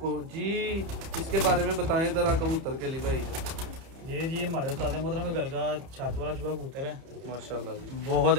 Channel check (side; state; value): left; late; 31 ms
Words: जी इसके बारे में बताएं ज़रा कबूतर के लिए भाई। जी हमारे उस्ताद मोहतरम के घर का छत वाला चूहा कबूतर है माशाल्लाह जी। बहुत